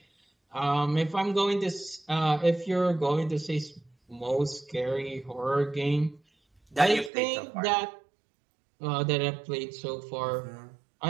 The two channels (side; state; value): left; drops out; at 7.1 s